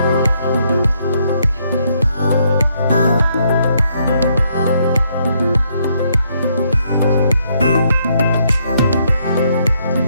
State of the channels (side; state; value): both; inverted; correlation -0.73